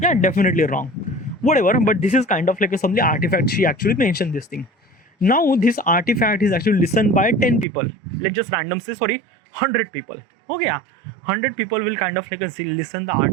Yeah, definitely wrong. Whatever, but this is kind of like a something artifact. She actually mentioned this thing. Now this artifact is actually listened by 10 people. Let's just random say sorry, 100 people. Okay, yeah. 100 people will kind of like listen the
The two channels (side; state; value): left; drops out; at 7.7 s